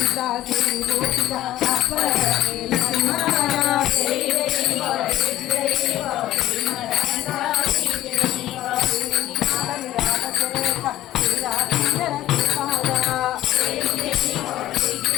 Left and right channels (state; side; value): quieter; right; 14.1 dB